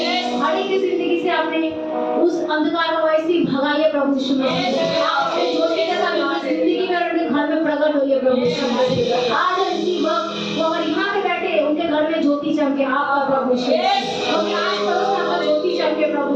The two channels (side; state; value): both; identical; correlation 1.00